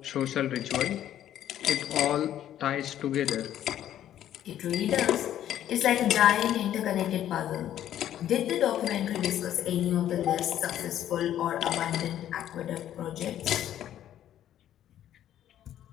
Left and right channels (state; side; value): quieter; right; 11.5 dB